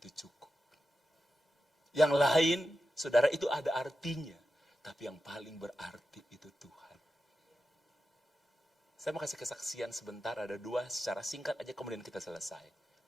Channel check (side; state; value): both; normal; correlation 0.90